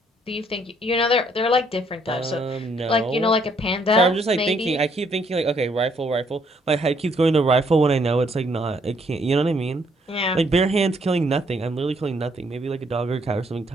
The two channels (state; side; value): normal; both; correlation 0.68